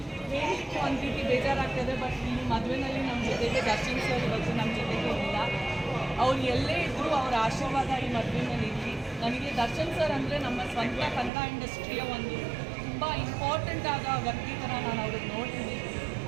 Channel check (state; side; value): drops out; left; at 11.3 s